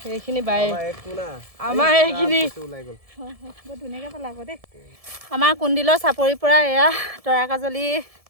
সেইখিনি বাই আমাৰ এইখিনি ওলাই গ'ল বৰ ধুনীয়াকৈ পেলাব দেই আমাৰ কুণ্ডিলৰ চাপৰিৰ পৰা এয়া তৰাকাজলি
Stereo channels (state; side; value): late; left; 1.7 ms